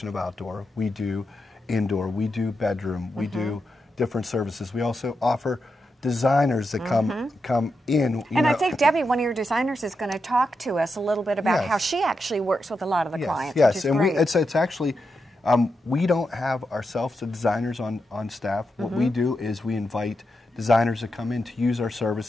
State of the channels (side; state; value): both; normal; correlation 0.86